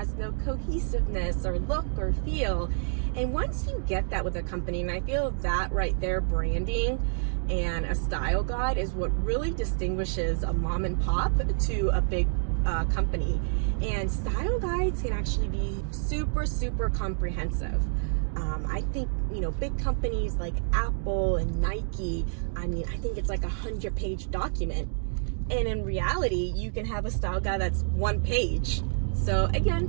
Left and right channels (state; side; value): silent; left; digital silence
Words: no cohesiveness or look or feel. And once you get that with a company, and I feel that right there, branding and a style guide is what really distinguishes a mom and pop to a big company. And style guides can actually be super comprehensive. I think, big companies like Apple and Nike, I think it's like 100-page document. And in reality, you can have a style guide that's 1 page. So